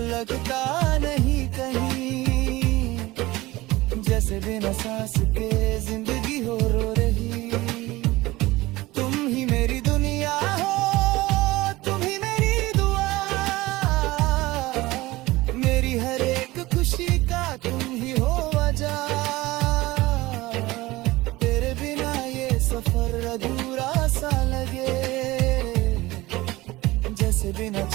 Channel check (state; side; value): quieter; left; 19.4 dB